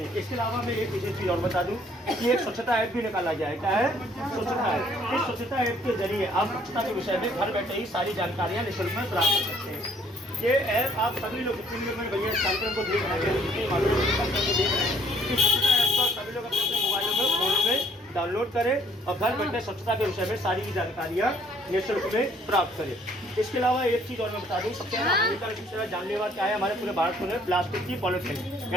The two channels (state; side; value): normal; both; correlation 0.62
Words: इसके अलावा मैं एक विशेष चीज़ और बता दूं कि एक स्वच्छता ऐप भी निकाला गया है। क्या है? स्वच्छता ऐप। इस स्वच्छता ऐप के जरिए आप स्वच्छता के विषय में घर बैठे ही सारी जानकारियाँ निःशुल्क में प्राप्त कर सकते हैं। ये ऐप आप सभी लोग, जितने लोग मेरे भैया इस कार्यक्रम को देख रहे हैं, जितने मालूम इस कार्यक्रम को देख रहे हैं, इस स्वच्छता ऐप को सभी लोग अपने अपने मोबाइलों में, फोनों में डाउनलोड करें और घर बैठे स्वच्छता के विषय में सारी जानकारियाँ निःशुल्क में प्राप्त करें। इसके अलावा एक चीज़ और मैं बता दूं, सबसे ज़्यादा हानिकारक, सबसे ज़्यादा जानलेवा क्या है हमारे पूरे भारत में? प्लास्टिक की पॉलिथीन